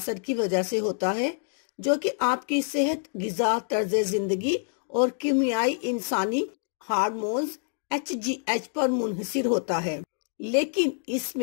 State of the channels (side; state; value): right; silent; digital silence